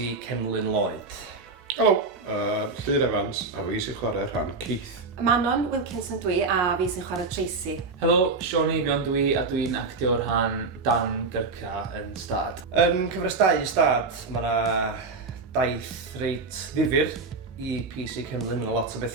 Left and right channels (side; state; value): left; quieter; 4.0 dB